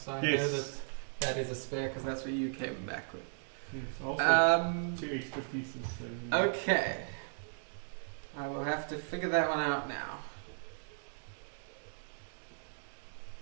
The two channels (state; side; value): silent; left; digital silence